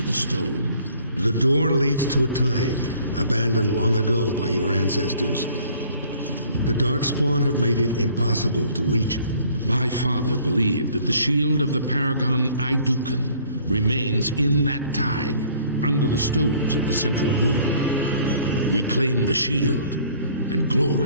the stone. The door leads to a taig, abandoned long ago by your ancestors. The Darkspawn have made it impossible to reach it. My father believed that the shield of the Paragon Aidukan remains in that taig, under the stones of the central room. Reclaim the shield, and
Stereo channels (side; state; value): both; inverted; correlation -0.56